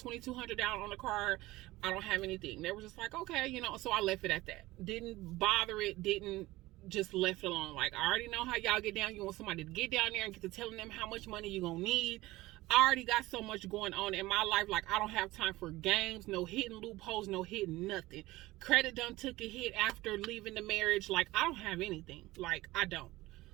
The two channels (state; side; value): quieter; left; 18.7 dB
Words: down on the car. I don't have anything. They were just like, okay, so I left it at that. Didn't bother it. Didn't, just left it alone. Like, I already know how y'all get down. You want somebody to get down there and get to telling them how much money you're gonna need. I already got so much going on in my life. Like, I don't have time for games, no hidden loopholes, no hidden nothing. Credit done took a hit after leaving the marriage. Like, I don't have anything. Like, I don't.